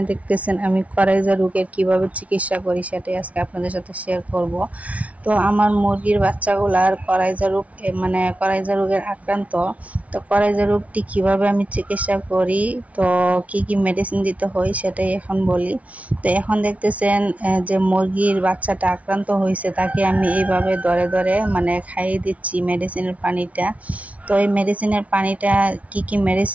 দেখতেছেন আমি করাইজা রোগের কিভাবে চিকিৎসা করি সেটাই আজকে আপনাদের সাথে শেয়ার করব। তো আমার মুরগির বাচ্চাগুলার করাইজা রোগ মানে করাইজা রোগের আক্রান্ত। তো করাইজা রোগটি কিভাবে আমি চিকিৎসা করি, তো কি কি মেডিসিন দিতে হয় সেটাই এখন বলি। তো এখন দেখতেছেন যে মুরগির বাচ্চাটা আক্রান্ত হয়েছে, তাকে আমি এইভাবে ধরে ধরে মানে খাইয়ে দিচ্ছি মেডিসিনের পানিটা। তো এই মেডিসিনের পানিটা কি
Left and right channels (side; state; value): left; late; 0.067 ms